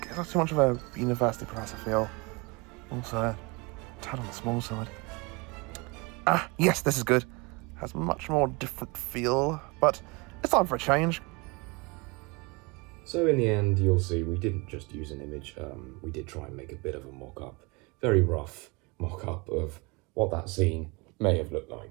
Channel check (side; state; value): left; quieter; 27.3 dB